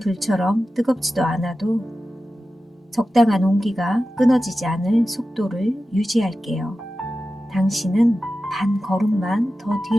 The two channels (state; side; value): normal; both; correlation 0.93